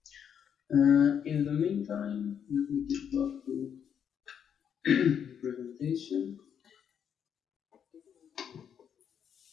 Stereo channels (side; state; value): right; quieter; 8.2 dB